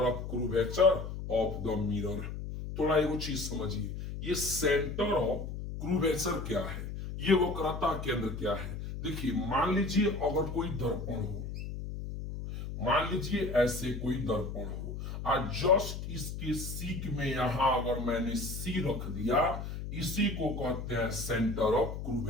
of curvature of the mirror. थोड़ा एगो चीज समझिए, ये सेंटर ऑफ क्रूवेचर क्या है, ये वक्रता केंद्र क्या है। देखिए मान लीजिए अगर कोई दर्पण हो, मान लीजिए ऐसे कोई दर्पण हो और जस्ट इसके सीक में यहां अगर मैंने सी रख दिया, इसी को कहते हैं सेंटर ऑफ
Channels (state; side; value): noise; left; hum, 6 dB below the sound